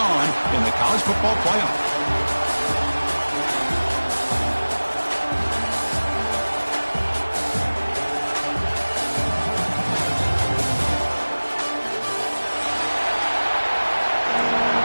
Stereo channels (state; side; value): inverted; both; correlation -1.00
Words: in the college football playoff.